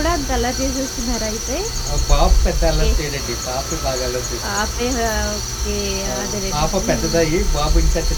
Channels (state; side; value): identical; both; correlation 1.00